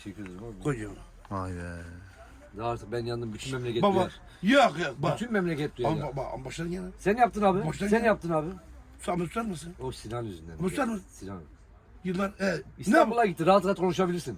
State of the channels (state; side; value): identical; both; correlation 1.00